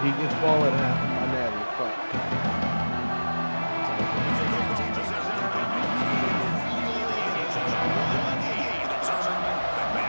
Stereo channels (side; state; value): both; inverted; correlation -1.00